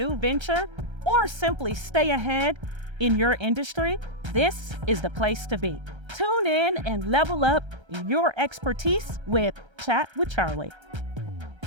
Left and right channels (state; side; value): late; left; 1.3 ms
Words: venture, or simply stay ahead in your industry, this is the place to be. Tune in and level up your expertise with Chat with Charli.